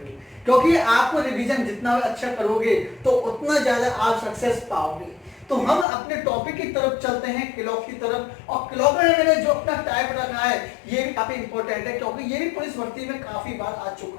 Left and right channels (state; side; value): drops out; right; at 5.9 s